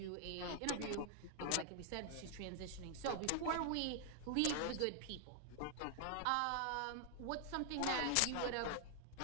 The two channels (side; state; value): both; different; correlation 0.00